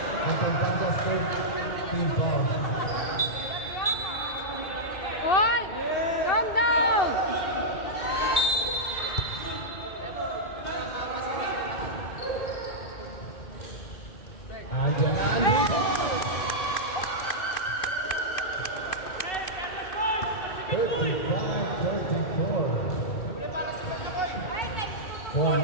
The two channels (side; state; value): right; late; 2.7 ms